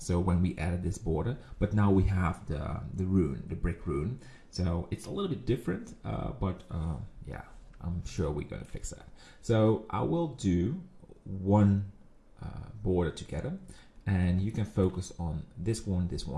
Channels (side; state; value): both; identical; correlation 1.00